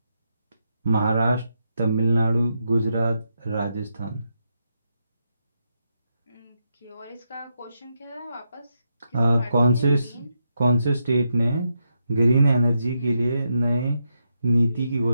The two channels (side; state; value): both; inverted; correlation -0.83